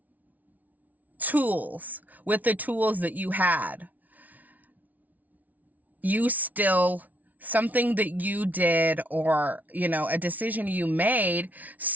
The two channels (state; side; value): late; left; 0.075 ms